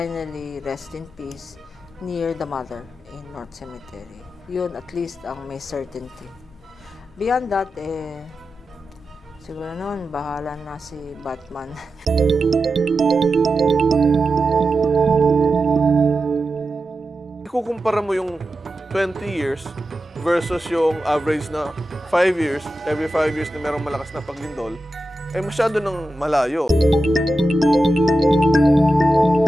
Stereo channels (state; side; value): normal; both; correlation 0.91